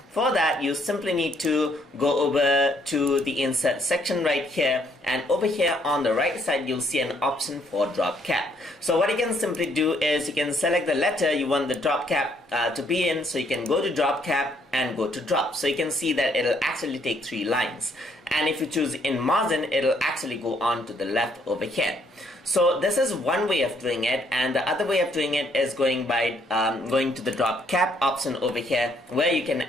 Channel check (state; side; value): normal; both; correlation 0.68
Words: For that, you simply need to go over to the insert section right here, and over here on the right side you'll see an option for drop cap. So what you can simply do is you can select the letter you want the drop cap to be in. So you can go to drop cap and go to drop. So you can see that it'll actually take 3 lines, and if you choose in margin, it'll actually go on to the left over here. So this is one way of doing it, and the other way of doing it is going to the drop cap option over here, where you can